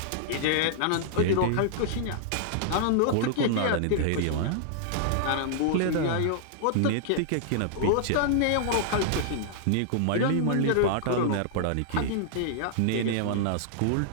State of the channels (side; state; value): both; different; correlation -0.01